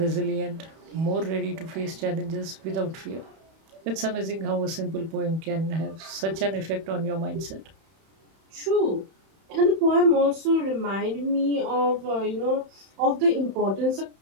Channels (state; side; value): late; left; 31 ms